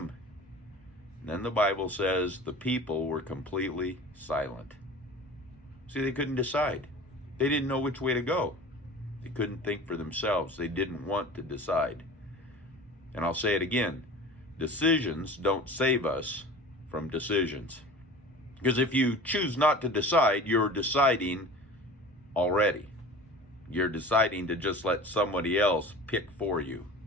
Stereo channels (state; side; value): normal; both; correlation 0.39